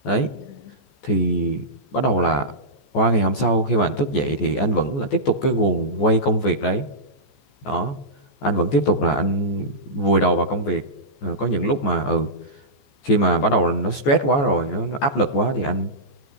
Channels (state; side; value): late; right; 14 ms